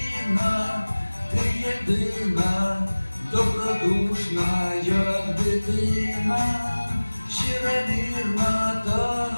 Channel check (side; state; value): both; inverted; correlation -1.00